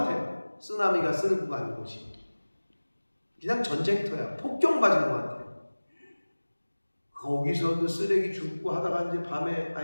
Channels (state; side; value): inverted; both; correlation -1.00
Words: 쓰나미가 쓸고 가는 곳이. 그냥 전쟁터야. 폭격 맞은 것 같아요. 거기서 그 쓰레기 줍고 하다가 이제 밤에